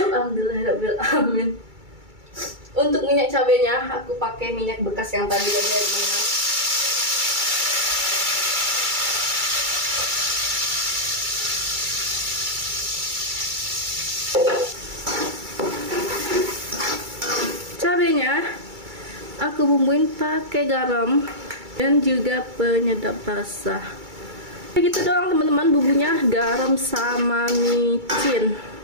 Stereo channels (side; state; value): left; late; 2.3 ms